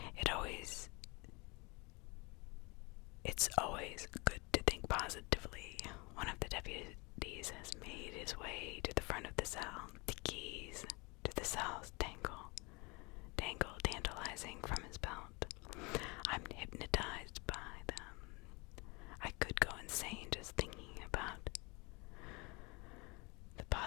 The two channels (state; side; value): quieter; right; 27.7 dB